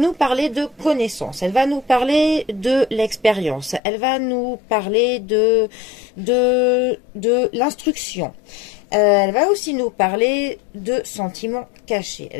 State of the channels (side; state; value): right; drops out; at 3.8 s